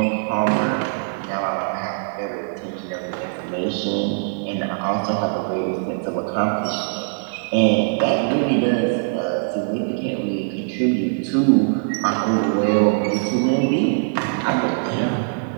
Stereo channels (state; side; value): silent; left; digital silence